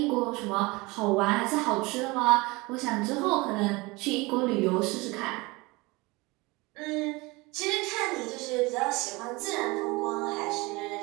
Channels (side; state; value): left; quieter; 23.8 dB